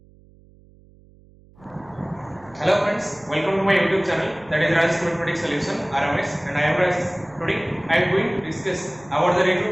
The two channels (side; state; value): right; noise; hum, 27 dB below the sound